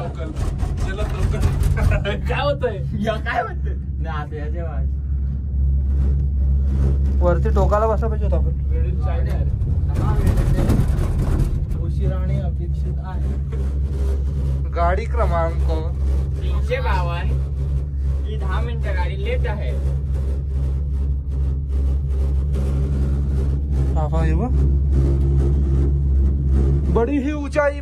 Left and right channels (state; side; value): identical; both; correlation 1.00